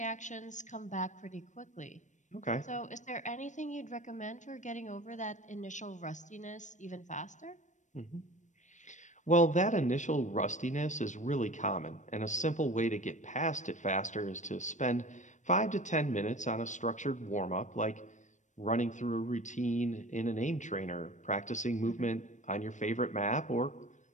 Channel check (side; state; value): right; late; 0.35 ms